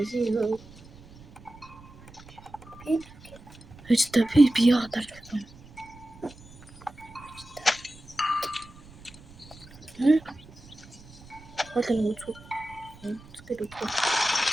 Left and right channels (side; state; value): right; noise; rumble, 21 dB below the sound